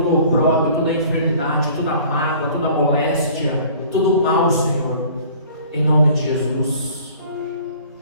o opróbrio, toda a enfermidade, toda a mágoa, toda a moléstia, todo o mal, Senhor, em nome de Jesus.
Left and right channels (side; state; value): both; inverted; correlation -0.50